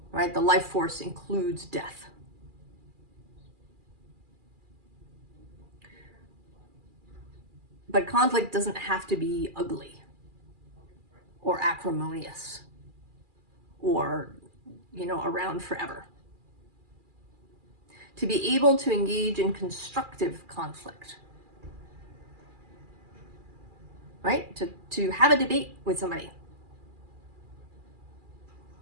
right? The life force includes death. But conflict doesn't have to be ugly or acrimonious or, you know, around forever. To be able to engage in constructive conflict, right? To have a debate with somebody,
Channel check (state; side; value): late; left; 2.4 ms